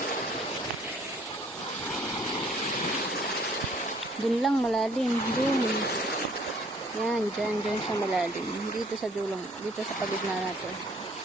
Dun lang malalim. Dun. Yan. Dyan siya malalim. Dito sa dulong. Dito sa pagigna natin.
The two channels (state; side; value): normal; both; correlation 0.59